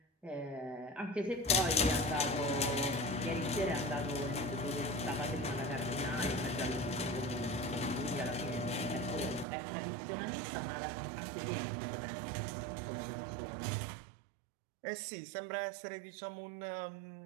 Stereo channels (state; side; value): drops out; left; at 9.5 s